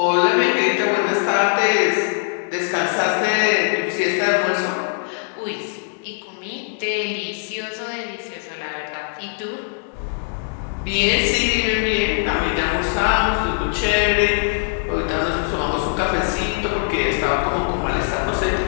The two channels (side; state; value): right; silent; digital silence